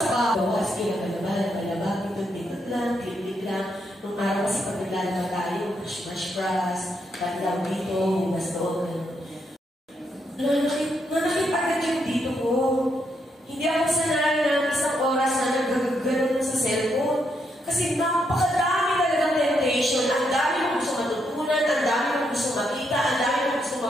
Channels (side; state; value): both; normal; correlation 0.79